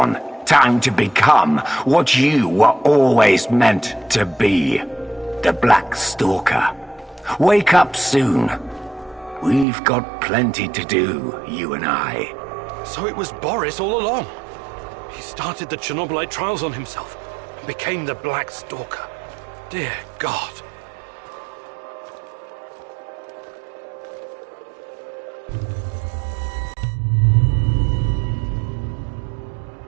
Time to become what you were always meant to be. The Black Stalker. Wake up soon. We've got plenty to do, you and I. So it was Boris all along. He started the Chernobylite trials on himself and became the Black Stalker. Dear God.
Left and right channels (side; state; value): left; drops out; at 9.7 s